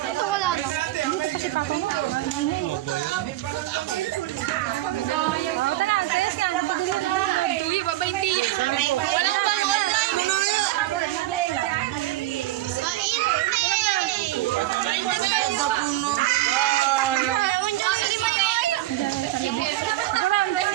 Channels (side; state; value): left; quieter; 16.0 dB